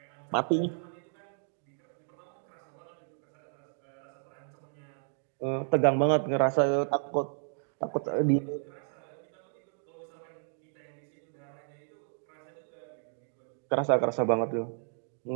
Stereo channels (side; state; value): left; silent; digital silence